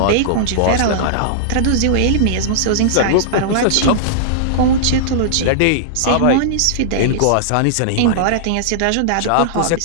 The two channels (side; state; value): both; different; correlation -0.02